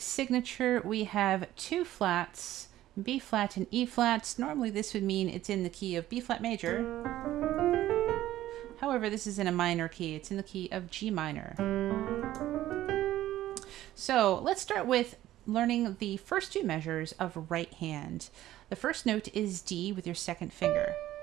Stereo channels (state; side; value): quieter; left; 14.1 dB